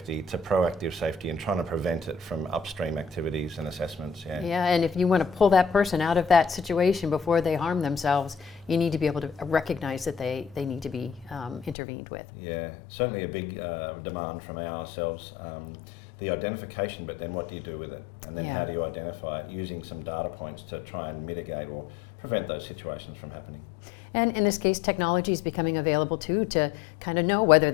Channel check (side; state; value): right; drops out; at 11.8 s